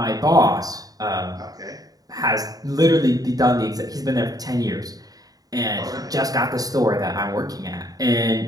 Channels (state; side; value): late; left; 0.18 ms